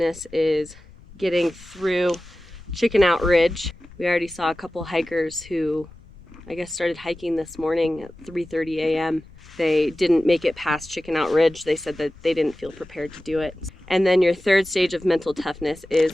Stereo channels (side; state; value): left; noise; rumble, 22 dB below the sound